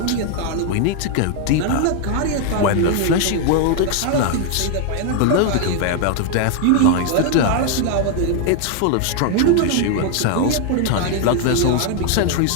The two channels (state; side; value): different; both; correlation 0.00